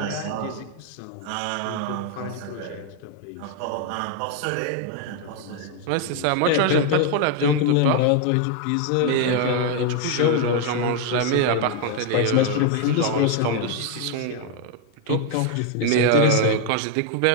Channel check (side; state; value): both; different; correlation 0.00